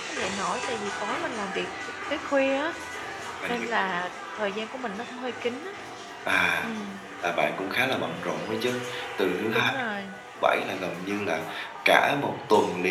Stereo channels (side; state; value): both; identical; correlation 1.00